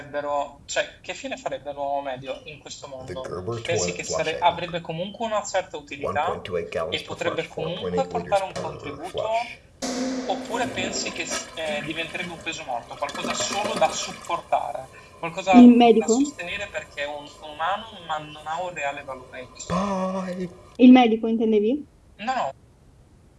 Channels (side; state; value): both; identical; correlation 1.00